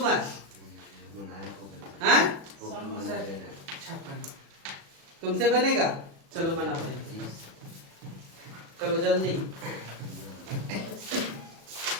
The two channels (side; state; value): left; late; 37 ms